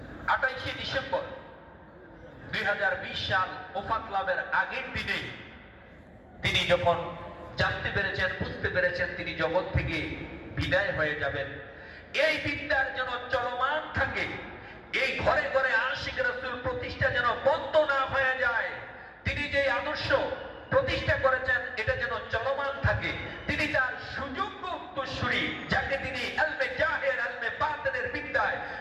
28শে ডিসেম্বর 2020 সাল ওফাত লাভের আগের দিনে তিনি যখন জানতে পেরেছেন, বুঝতে পেরেছেন তিনি জগৎ থেকে বিদায় হয়ে যাবেন, এই বিদ্যার যেন চলমান থাকে, এই ঘরে ঘরে আশিক রাসূল প্রতিষ্ঠা যেন বন্ধ না হয়ে যায়। তিনি যে আদর্শ প্রতিষ্ঠা করেছেন এটা যেন চলমান থাকে। তিনি তার সুযোগ্য উত্তরসূরি, যাকে তিনি ইলমে জাহির ইলমে বাতিনের বিদ্যায়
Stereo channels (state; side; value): identical; both; correlation 1.00